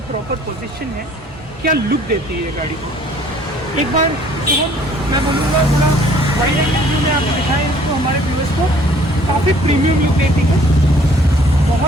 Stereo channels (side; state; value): both; normal; correlation 0.57